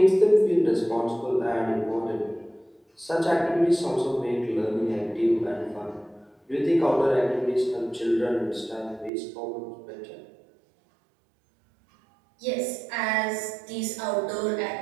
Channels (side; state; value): left; drops out; at 9.1 s